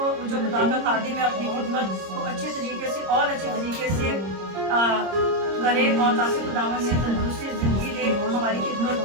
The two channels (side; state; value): left; late; 26 ms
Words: जो खुदा का खादिम है, अपनी खिदमत को अच्छे तरीके से और अच्छे तरीके से करे, और ताकि खुदावंद ने तंदुरुस्ती, ज़िंदगी दे, हमारी खिदमत